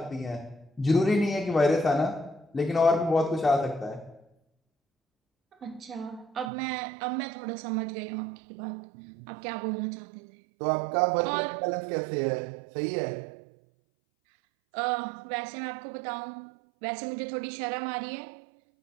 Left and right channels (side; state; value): left; drops out; at 6.5 s